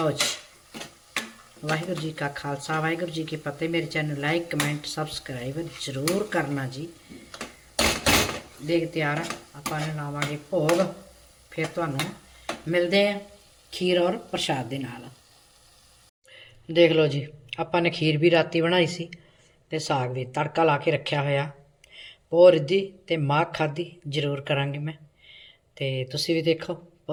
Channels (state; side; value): identical; both; correlation 1.00